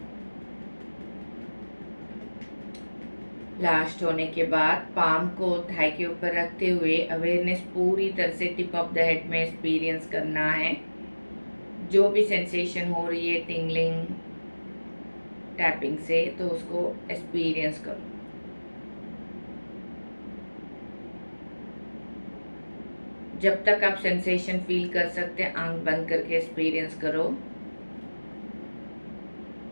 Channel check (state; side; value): inverted; both; correlation -1.00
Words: Last होने के बाद पाम को थाई के ऊपर रखते हुए अवेयरनेस पूरी तरह से टिप ऑफ द हेड में एक्सपीरियंस करना है। जो भी सेंसेशन हो रही है टिंगलिंग टैपिंग से, तो उसको एक्सपीरियंस करो। जब तक आप सेंसेशन फील कर सकते हैं आंख बंद करके एक्सपीरियंस करो।